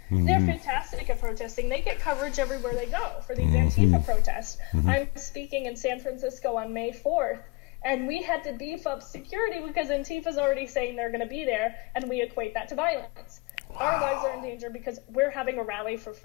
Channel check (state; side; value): quieter; right; 26.1 dB